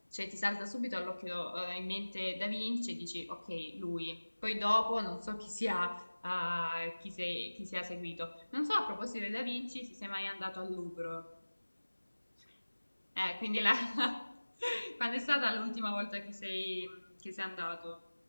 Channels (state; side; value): inverted; both; correlation -1.00